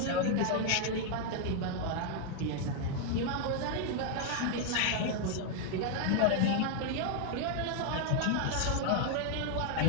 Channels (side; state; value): both; different; correlation 0.00